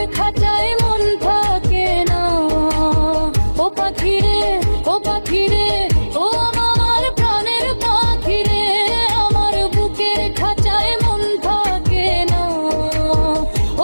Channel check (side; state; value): both; inverted; correlation -1.00